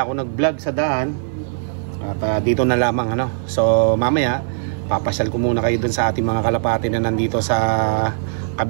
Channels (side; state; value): left; silent; digital silence